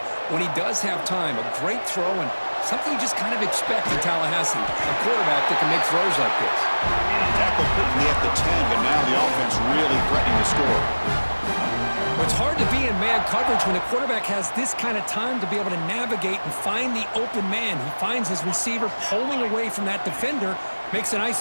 when he does have time. A great throw and something you just kind of expect in Tallahassee. A quarterback that can make throws like this. Tackle quickly at the 10, but now the offense really threatening to score. It's hard to be in man coverage when the quarterback has this kind of time to be able to navigate and find the open man. He finds his receiver pulling away from that defender, makes a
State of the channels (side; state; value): both; inverted; correlation -1.00